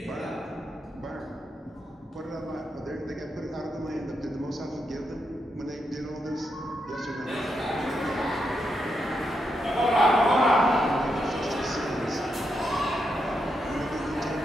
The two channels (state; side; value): normal; both; correlation 0.82